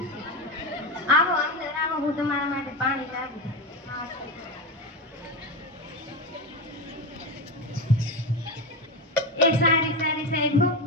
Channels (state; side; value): normal; both; correlation 0.18